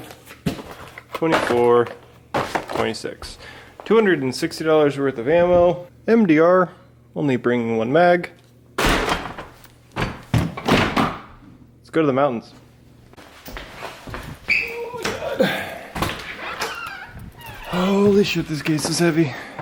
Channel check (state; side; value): identical; both; correlation 1.00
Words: 24, 26. $260 worth of ammo. MDR, only bringing 1 mag. Let's go to the mountains. Oh my god. Holy shit, this case is heavy.